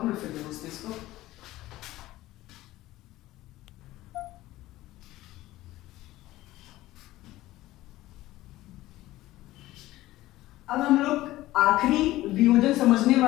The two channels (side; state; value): right; quieter; 16.6 dB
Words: हूं मैं फिर समझते इसको। अब हम लोग आखिरी वियोजन समझने